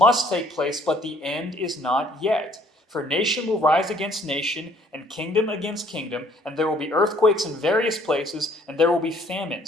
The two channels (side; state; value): both; normal; correlation 0.60